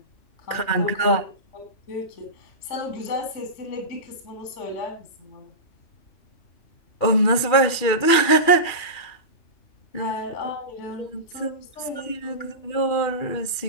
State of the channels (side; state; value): right; late; 2.4 ms